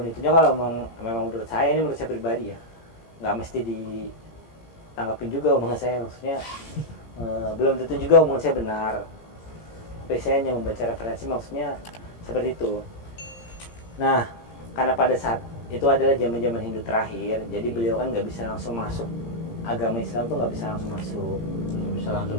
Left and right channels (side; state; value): right; late; 17 ms